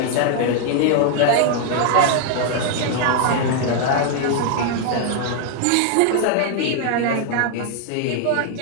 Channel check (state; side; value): different; both; correlation 0.00